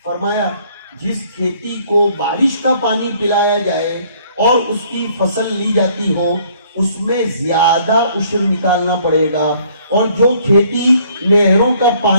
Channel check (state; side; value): inverted; both; correlation -0.61